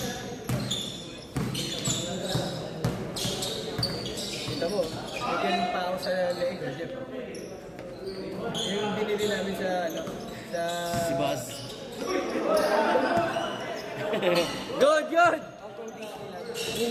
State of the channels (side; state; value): both; identical; correlation 1.00